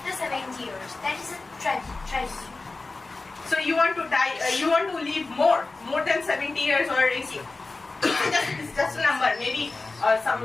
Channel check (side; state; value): right; quieter; 3.5 dB